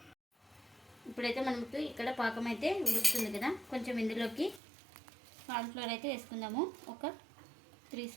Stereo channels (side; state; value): left; drops out; at 4.6 s